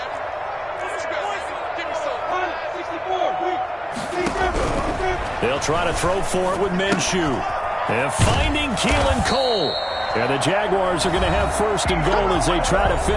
They'll try to throw for it with Minshew. And finding Keelan Cole. And the Jaguars are going to have first and goal as they try to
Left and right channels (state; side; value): identical; both; correlation 1.00